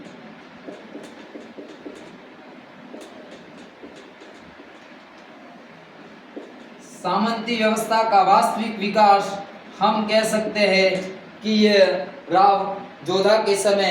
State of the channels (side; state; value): both; identical; correlation 1.00